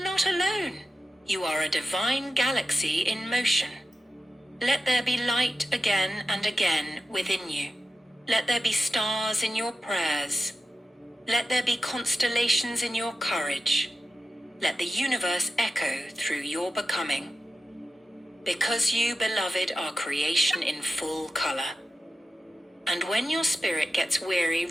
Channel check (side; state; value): both; normal; correlation 0.92